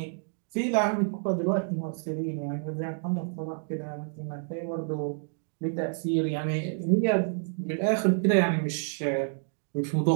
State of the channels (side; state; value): left; silent; 59 dB below the other